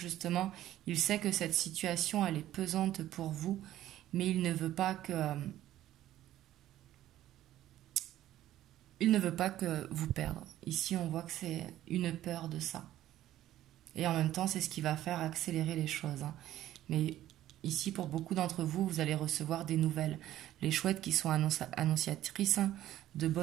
il sait que cette situation, elle est pesante pour vous, mais il ne veut pas que... il ne veut pas que vous perdre. Ici, on voit que c'est une peur de ça. Et en même temps, c'est ce qui va faire accélérer les choses. Hein. Mais ici, pour beaucoup d'entre vous, vous allez recevoir des nouvelles. Les chouettes qui sont annonciatrices hein, de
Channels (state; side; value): quieter; left; 13.5 dB